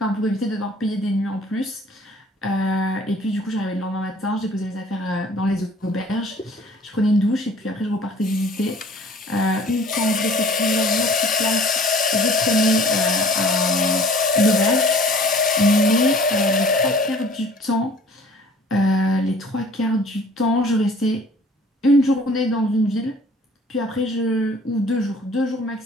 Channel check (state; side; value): normal; both; correlation 0.51